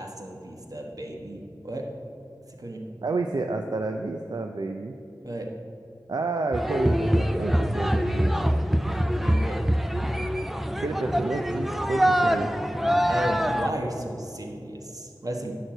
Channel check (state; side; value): normal; both; correlation 0.94